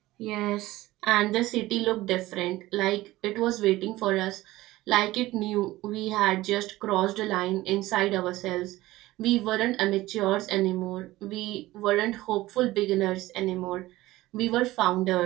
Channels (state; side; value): quieter; left; 17.5 dB